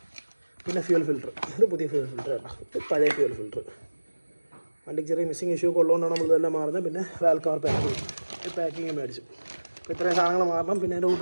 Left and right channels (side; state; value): both; inverted; correlation -1.00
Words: പിന്നെ ഫ്യൂൽ ഫിൽറ്റർ, ഇത് പുതിയ ഫ്യൂൽ ഫിൽറ്റർ കേട്ടോ, ഇത് പഴയ ഫ്യൂൽ ഫിൽറ്റർ. വണ്ടിക്ക് ചെറിയ മിസ്സിങ് ഇഷ്യൂ ഒക്കെ ഉള്ളതുകൊണ്ടാണ് നമ്മളിതെല്ലാം മാറുന്നത്. പിന്നെ വാൽ കവർ പാക്കിങ് മേടിച്ചു. അപ്പോൾ ഇത്രയും സാധനങ്ങൾ മാറണം. പിന്നെ അതിൻ്റെ